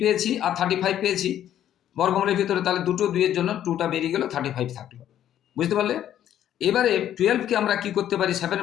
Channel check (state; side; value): quieter; right; 11.1 dB